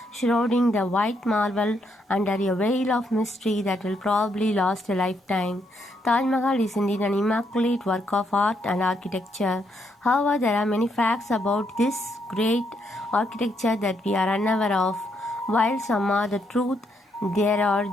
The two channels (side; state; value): both; normal; correlation 0.76